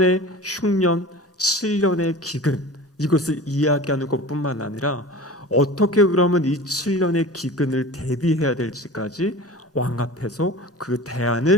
흉년, 7년의 기근, 이것을 이야기하는 것뿐만 아니라 어떻게 그러면 이 7년의 기근을 대비해야 될지까지 왕 앞에서 그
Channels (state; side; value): normal; both; correlation 0.36